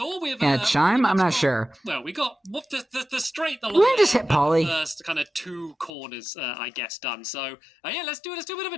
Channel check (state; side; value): drops out; right; at 5.9 s